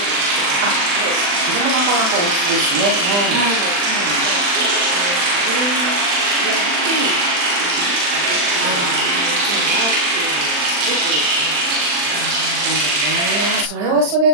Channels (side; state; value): left; late; 40 ms